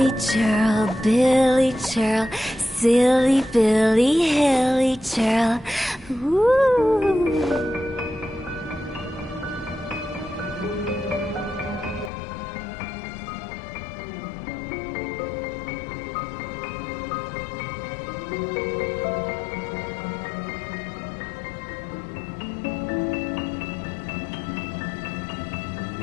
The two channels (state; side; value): drops out; right; at 12.1 s